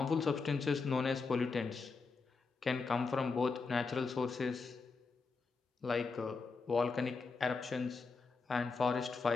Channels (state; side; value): quieter; right; 4.5 dB